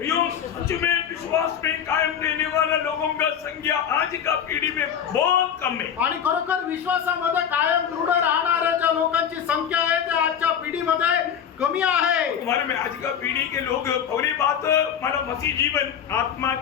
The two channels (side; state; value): right; quieter; 8.4 dB